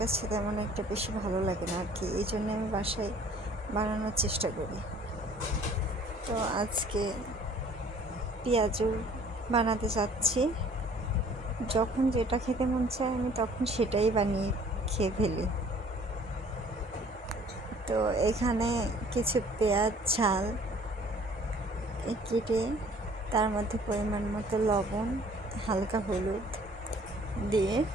তেমন একটা বেশি ভালো লাগে না আর কি, এই জন্য আমি বাসায় বানানোর চেষ্টা করি। তো আজকে পেঁয়াজু বানাতে চাচ্ছি। যখন যেটা খেতে মন চায় আমি তখন সেটাই বানিয়ে খেয়ে ফেলি। তো এখানে কিছু পেঁয়াজ ঝাল কেটে তার মধ্যে পরিমাণ মতো লবণ, হালকা হলুদ দিয়ে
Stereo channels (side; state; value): both; normal; correlation 0.54